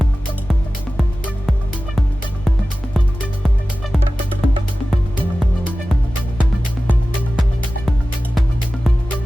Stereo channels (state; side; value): normal; both; correlation 0.96